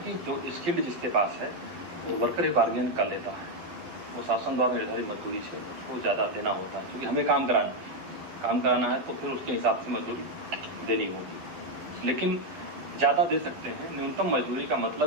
जो स्किल्ड जिसके पास है वो वर्कर ही बार्गेन कर लेता है, वो शासन द्वारा निर्धारित मजदूरी से उसको ज़्यादा देना होता है, क्योंकि हमें काम कराना है तो फिर उसके हिसाब से मजदूरी देनी होगी। लेकिन ज़्यादा दे सकते हैं। न्यूनतम मजदूरी का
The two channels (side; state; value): left; late; 12 ms